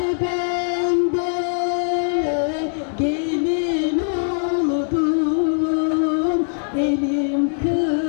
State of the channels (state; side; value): silent; right; digital silence